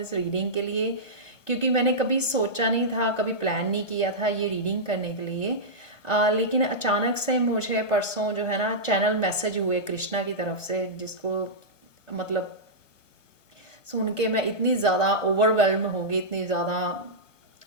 रीडिंग के लिए, क्योंकि मैंने कभी सोचा नहीं था, कभी प्लान नहीं किया था ये रीडिंग करने के लिए। लेकिन अचानक से मुझे परसों जो है ना चैनल मैसेज हुए कृष्णा की तरफ से, जिसको मतलब सुन के मैं इतनी ज़्यादा ओवरवेल्म हो गई, इतनी ज़्यादा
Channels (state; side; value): late; right; 1.1 ms